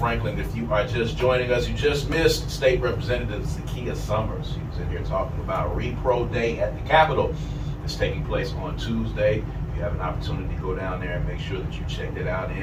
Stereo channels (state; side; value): identical; both; correlation 1.00